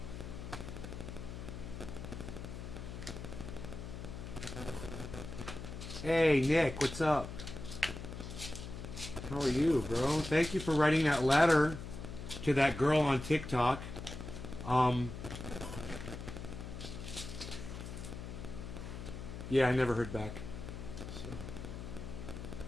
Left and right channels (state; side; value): noise; left; hum, 9 dB below the sound